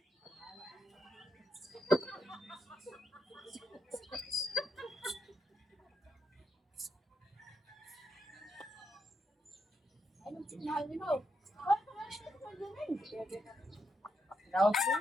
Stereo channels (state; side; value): normal; both; correlation 0.81